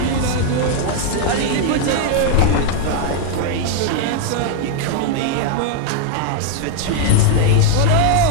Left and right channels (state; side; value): different; both; correlation 0.00